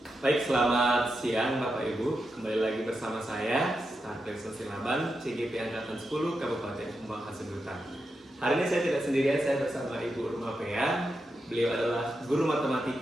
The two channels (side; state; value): both; normal; correlation 0.87